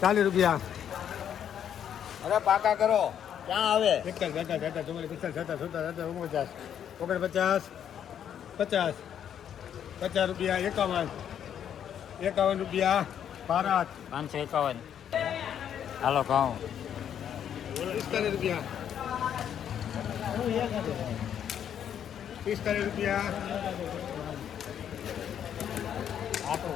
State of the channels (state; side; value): quieter; right; 9.3 dB